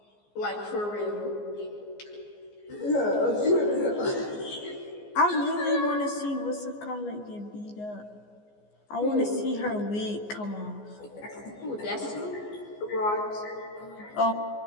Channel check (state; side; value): late; right; 14 ms